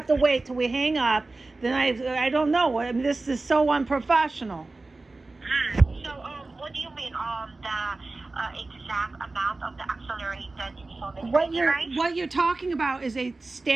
to wait till we hang up? Then I don't know. I mean, this is so unprofessional. So, what do you mean, the exact amount of the accelerated installment payment, right? What you're talking about is a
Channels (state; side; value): quieter; left; 3.3 dB